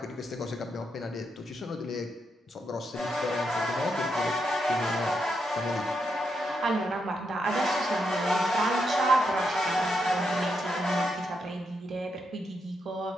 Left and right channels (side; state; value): both; normal; correlation 0.82